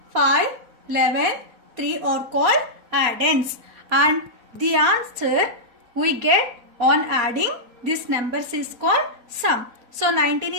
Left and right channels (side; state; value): left; late; 4.3 ms